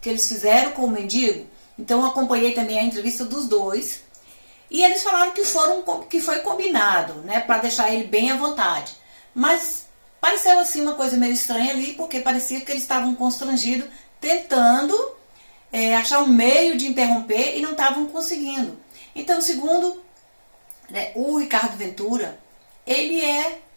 que eles fizeram com o mendigo. Então eu acompanhei também a entrevista dos dois, e eles falaram que foi combinado, né, para deixar ele bem à vontade. Mas pareceu assim uma coisa meio estranha ali, porque parecia que eles estavam constrangidos, tentando achar um meio de interromper e não estavam conseguindo. Então, segundo, né, o Ricardo Ventura, ele é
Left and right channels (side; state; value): both; inverted; correlation -1.00